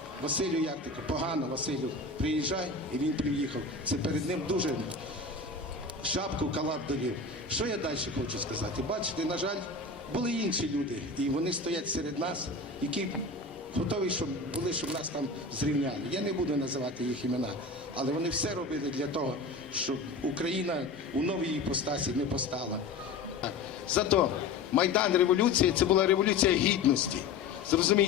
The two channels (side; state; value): right; quieter; 4.0 dB